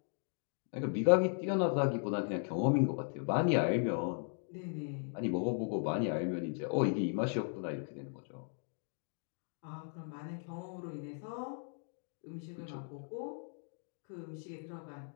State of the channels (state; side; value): silent; right; 53 dB below the other